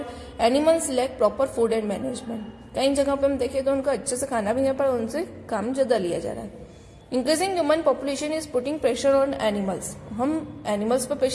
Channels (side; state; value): both; identical; correlation 1.00